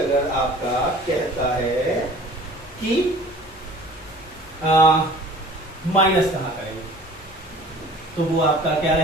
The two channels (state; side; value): normal; both; correlation 0.47